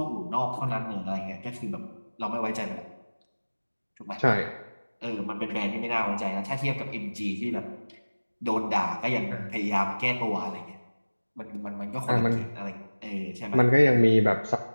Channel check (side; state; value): both; inverted; correlation -1.00